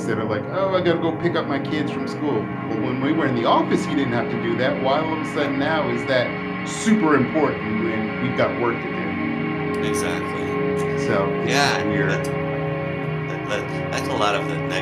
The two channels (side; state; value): both; identical; correlation 1.00